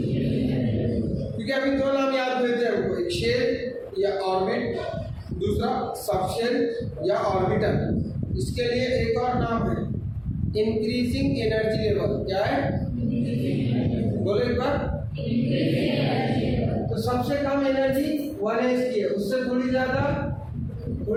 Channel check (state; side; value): identical; both; correlation 1.00